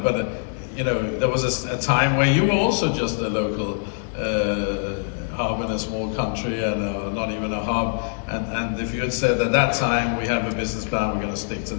you know, there was a time where you were also just a local hub in a small country, and not even a hub. And if you had said at that time, we have a business plan, we're going to stick to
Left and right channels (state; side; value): silent; right; 59 dB below the other